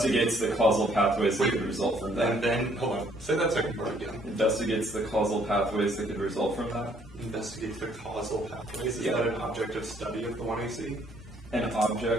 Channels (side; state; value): both; normal; correlation 0.64